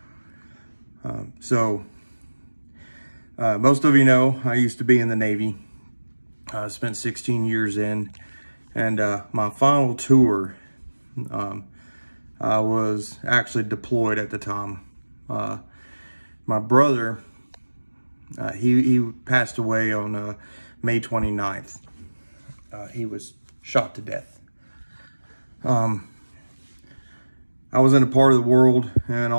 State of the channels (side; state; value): both; inverted; correlation -1.00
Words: Most of you know I used to be in the Navy. I spent 16 years in, and my final tour, I was actually deployed at the time. My brother, he passed away on May 29th. He was shot to death. I was in a part of the world